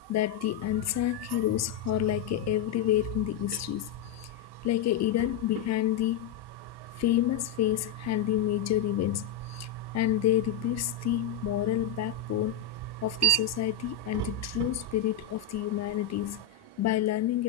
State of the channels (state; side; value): quieter; right; 7.5 dB